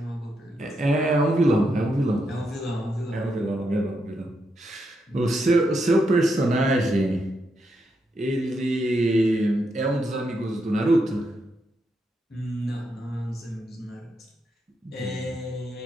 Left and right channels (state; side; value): normal; both; correlation 0.82